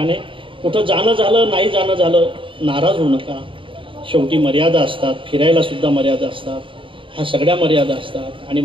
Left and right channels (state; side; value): late; left; 0.25 ms